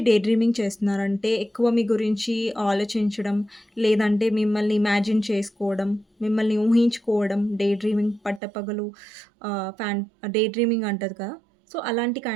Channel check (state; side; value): drops out; left; at 8.4 s